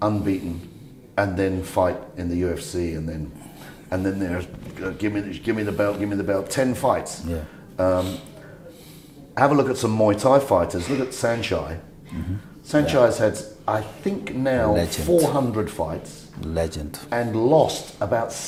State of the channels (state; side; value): identical; both; correlation 1.00